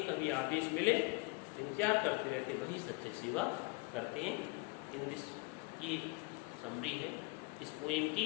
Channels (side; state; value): right; quieter; 26.6 dB